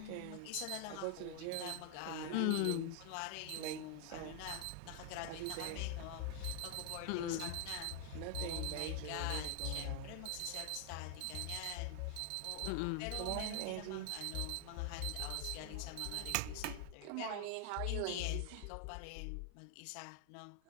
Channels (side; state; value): both; different; correlation 0.00